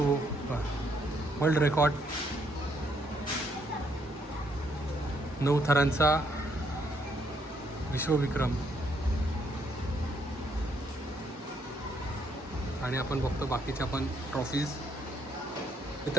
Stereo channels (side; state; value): both; normal; correlation 0.72